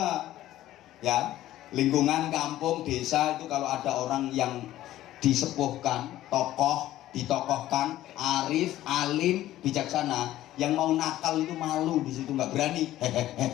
ya. Lingkungan kampung, desa itu kalau ada orang yang disepuhkan, tokoh, ditokohkan, arif, alim, bijaksana, yang mau nakal itu malu di situ, nggak berani.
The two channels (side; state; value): right; quieter; 14.3 dB